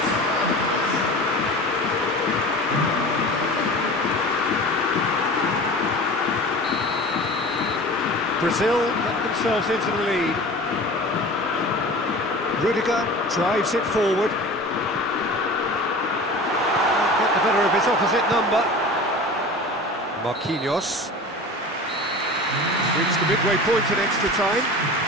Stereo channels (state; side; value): normal; both; correlation 0.37